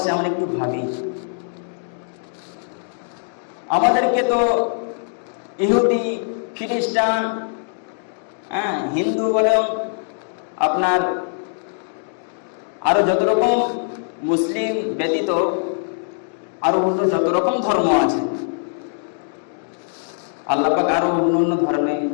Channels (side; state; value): right; silent; digital silence